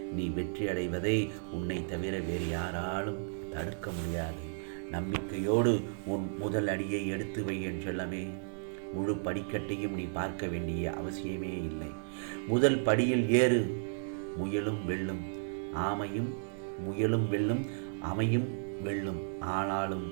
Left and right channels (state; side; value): silent; left; digital silence